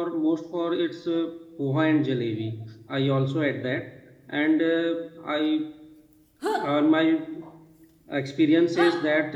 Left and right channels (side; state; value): both; identical; correlation 1.00